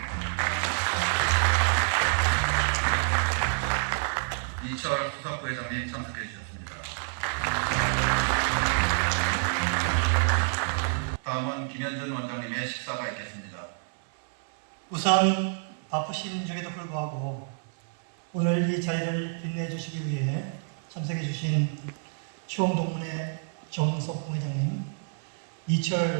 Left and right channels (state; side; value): silent; left; 59 dB below the other